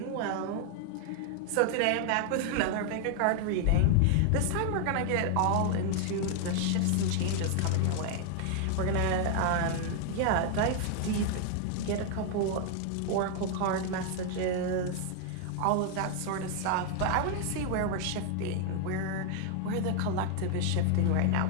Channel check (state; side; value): different; both; correlation 0.00